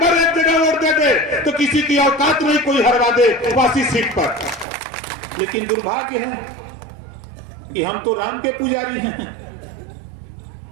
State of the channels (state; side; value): drops out; left; at 4.7 s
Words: एक जगह वोट देते तो किसी की औकात नहीं कोई हरवा दे वासी सीट पर। लेकिन दुर्भाग्य है कि हम तो राम के पुजारी हैं,